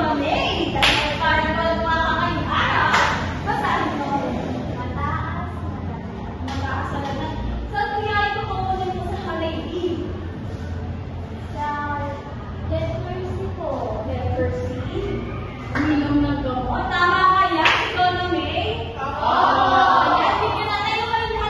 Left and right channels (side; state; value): both; identical; correlation 1.00